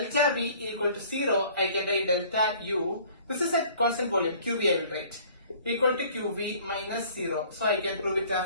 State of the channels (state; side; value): inverted; both; correlation -0.53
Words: V equal to 0, I can write delta U. This is at constant volume, QV I will write. Equal to QV minus 0. So I can prove it